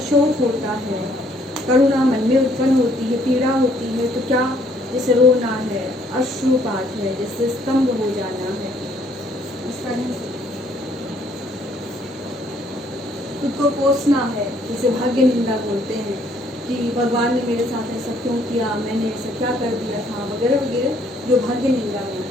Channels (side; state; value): both; normal; correlation 0.65